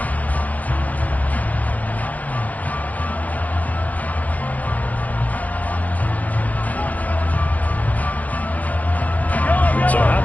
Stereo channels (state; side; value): late; right; 0.078 ms